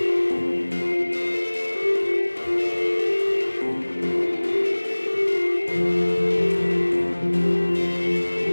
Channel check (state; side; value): inverted; both; correlation -1.00